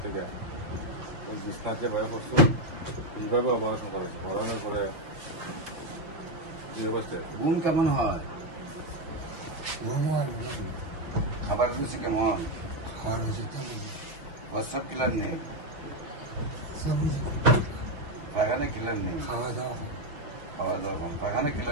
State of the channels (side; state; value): left; late; 5.8 ms